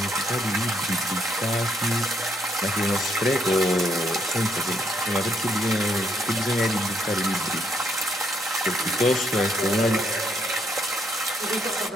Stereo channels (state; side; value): normal; both; correlation 0.72